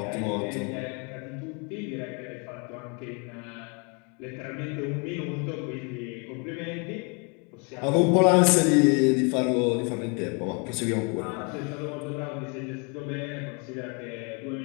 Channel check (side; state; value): right; quieter; 33.9 dB